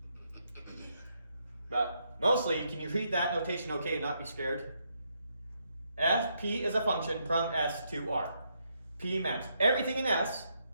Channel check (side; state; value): both; inverted; correlation -0.77